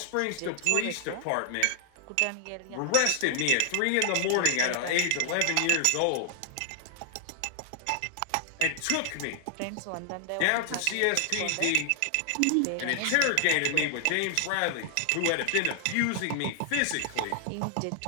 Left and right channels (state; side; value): different; both; correlation 0.00